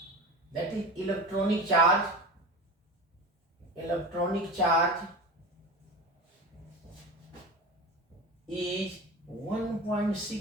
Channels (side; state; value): both; normal; correlation 0.30